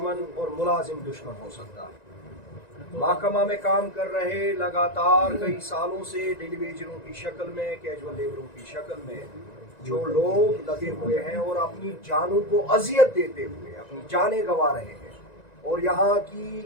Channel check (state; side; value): late; right; 1.9 ms